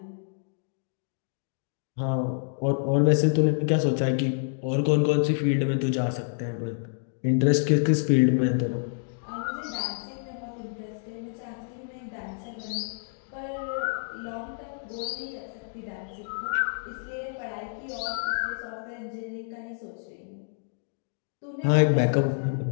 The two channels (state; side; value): silent; right; digital silence